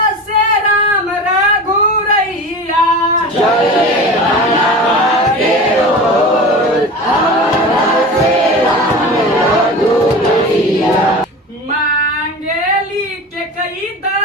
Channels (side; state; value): both; normal; correlation 0.32